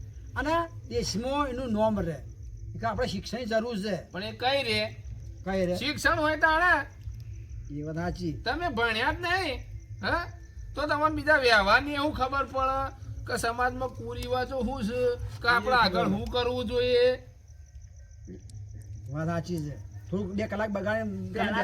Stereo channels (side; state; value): both; identical; correlation 1.00